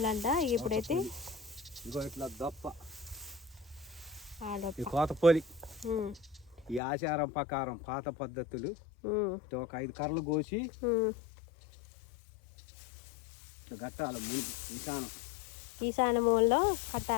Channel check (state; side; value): drops out; right; at 6.8 s